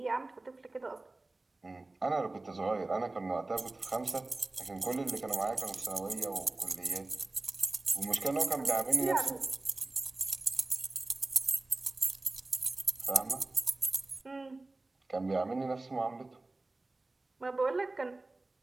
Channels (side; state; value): left; quieter; 3.1 dB